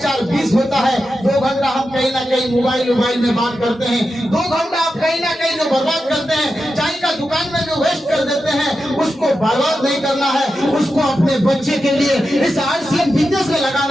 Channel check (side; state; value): both; normal; correlation 0.90